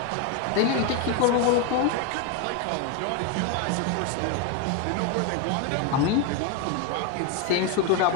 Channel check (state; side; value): different; both; correlation 0.01